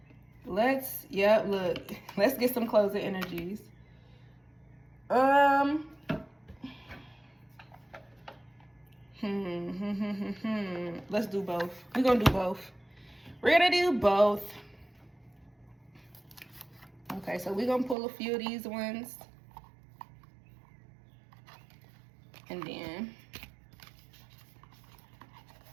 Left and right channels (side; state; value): left; drops out; at 17.9 s